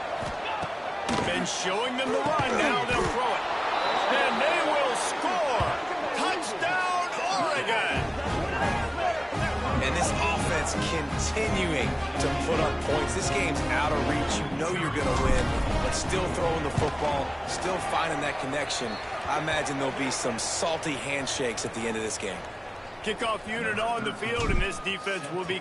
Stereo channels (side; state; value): both; identical; correlation 1.00